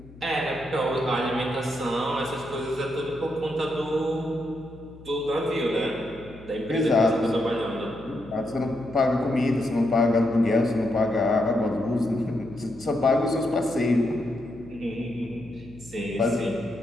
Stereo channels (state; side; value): noise; left; hum, 20 dB below the sound